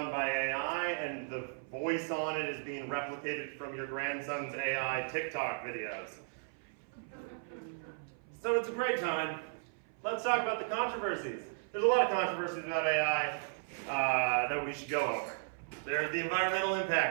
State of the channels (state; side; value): silent; left; 54 dB below the other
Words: by AI, and the voice on it is being replicated from your grandson's AI TikTok videos. So it's a great time. Let's talk about the controversies. There's a lot of controversies about AI that we should go over. There's the environmental